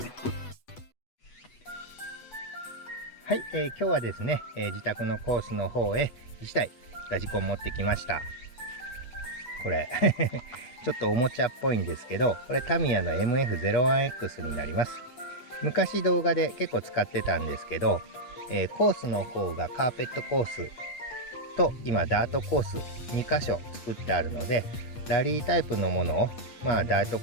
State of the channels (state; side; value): late; right; 8.2 ms